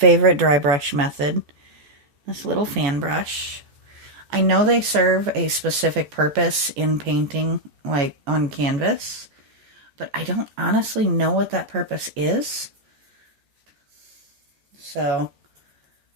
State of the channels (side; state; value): left; late; 14 ms